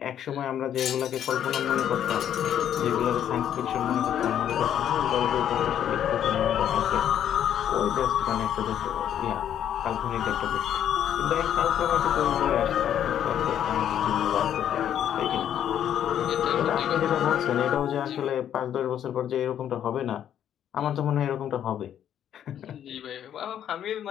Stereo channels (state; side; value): quieter; right; 10.1 dB